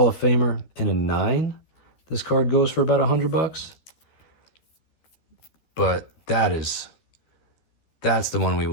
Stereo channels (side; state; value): right; late; 13 ms